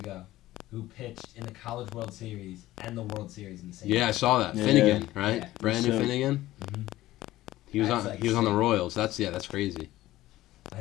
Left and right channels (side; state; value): right; quieter; 16.0 dB